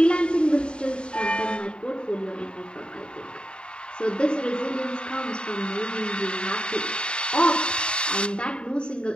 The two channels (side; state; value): right; late; 0.052 ms